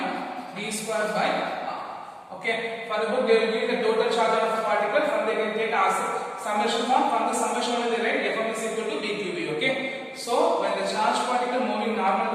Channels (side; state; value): both; identical; correlation 1.00